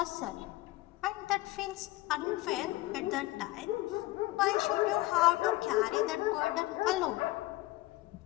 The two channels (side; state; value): right; quieter; 18.7 dB